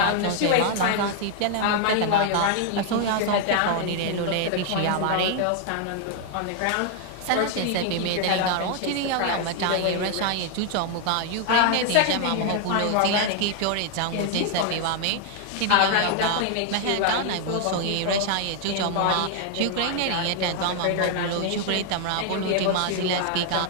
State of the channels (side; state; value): both; different; correlation 0.00